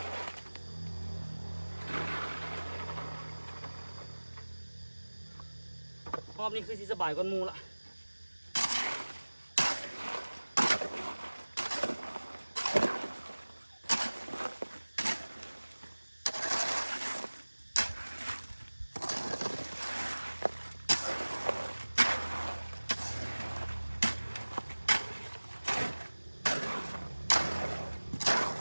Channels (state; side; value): inverted; both; correlation -1.00